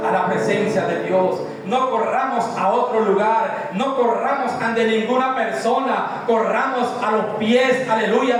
a la presencia de Dios. No corramos a otro lugar, no corramos ante ninguna persona, corramos a los pies, aleluya,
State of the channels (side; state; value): both; identical; correlation 1.00